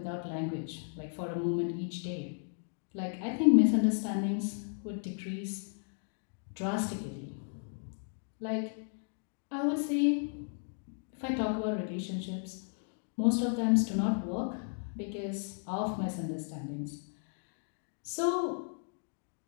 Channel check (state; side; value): silent; right; 55 dB below the other